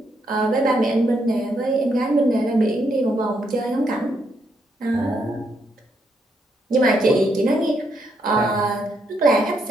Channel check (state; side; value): normal; both; correlation 0.77